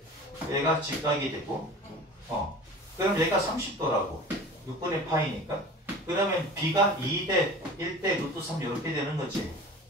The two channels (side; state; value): both; normal; correlation 0.39